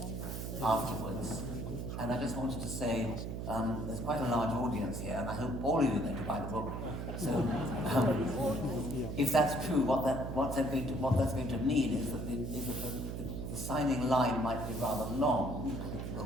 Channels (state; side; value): noise; right; hum, 4 dB below the sound